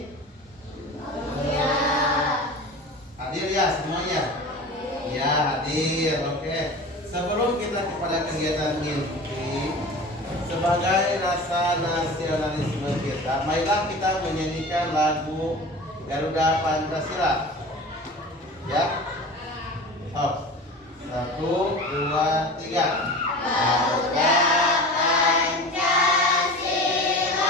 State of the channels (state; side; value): normal; both; correlation 0.35